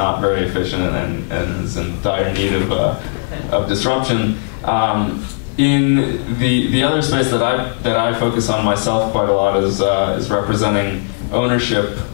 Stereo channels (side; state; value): right; silent; 68 dB below the other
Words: very efficient and is in dire need of disruption. In the other space that I focus on myself quite a lot is representing ownership